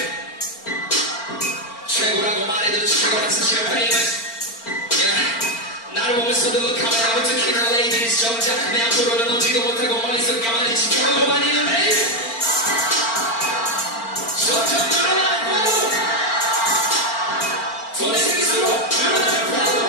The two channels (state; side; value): late; right; 4.4 ms